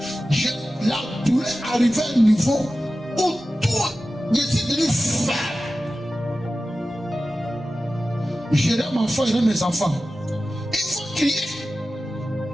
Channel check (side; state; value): both; normal; correlation 0.94